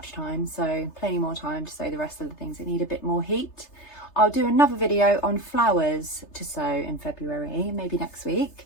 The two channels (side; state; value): right; late; 3.3 ms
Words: time, so plenty more time to sow the rest of the things that need a bit more heat. I'll do another video on flowers to sow in February, maybe next